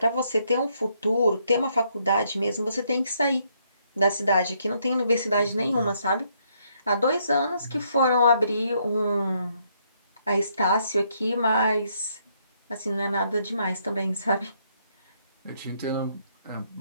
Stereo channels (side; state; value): both; inverted; correlation -0.72